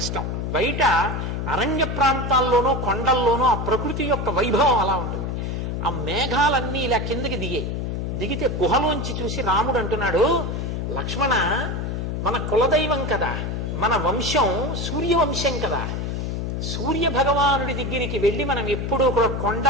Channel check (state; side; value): noise; left; hum, 2 dB below the sound